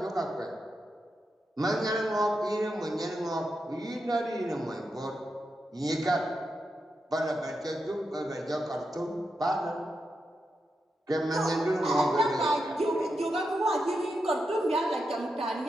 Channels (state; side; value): normal; both; correlation 0.86